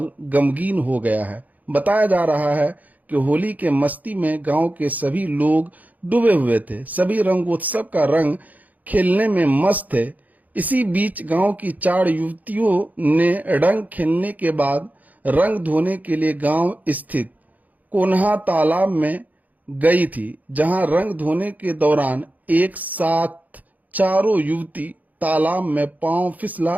गमगीन हो गया है। बताया जा रहा है कि होली के मस्ती में गांव के सभी लोग डूबे हुए थे। सभी रंगोत्सव का रंग खेलने में मस्त थे। इसी बीच गांव की 4 युवतियों ने रंग खेलने के बाद रंग धोने के लिए गांव स्थित कोन्हा तालाब में गई थी, जहां रंग धोने के दौरान एक साथ चारों युवती तालाब में पांव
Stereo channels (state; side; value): late; left; 0.079 ms